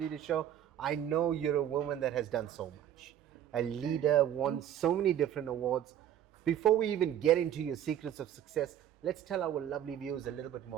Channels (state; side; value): quieter; left; 10.7 dB